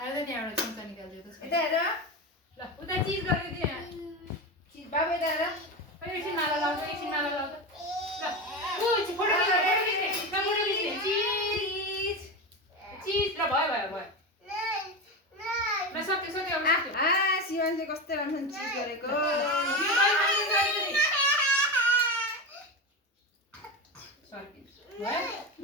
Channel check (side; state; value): both; normal; correlation 0.20